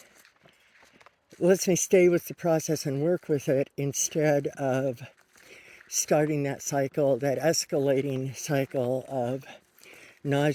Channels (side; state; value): both; identical; correlation 1.00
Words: with the process and work with it, instead of starting that cycle, that escalating cycle of